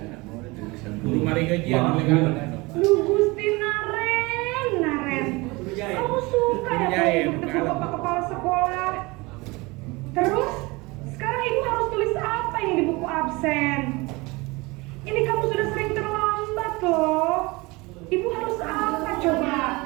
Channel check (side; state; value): left; quieter; 24.1 dB